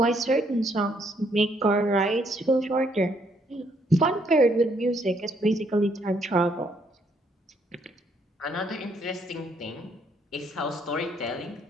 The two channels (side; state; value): both; normal; correlation 0.70